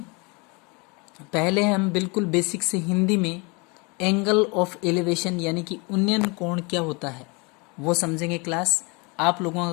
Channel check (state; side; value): quieter; right; 29.1 dB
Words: पहले हम बिल्कुल बेसिक से हिंदी में एंगल ऑफ एलिवेशन यानी कि उन्नयन कोण क्या होता है वो समझेंगे क्लास। आप लोगों